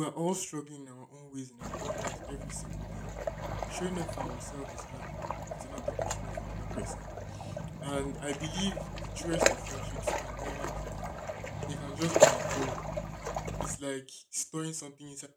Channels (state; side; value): identical; both; correlation 1.00